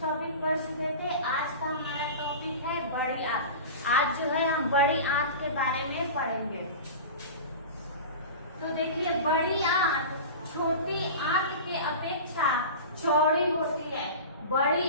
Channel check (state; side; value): inverted; both; correlation -0.32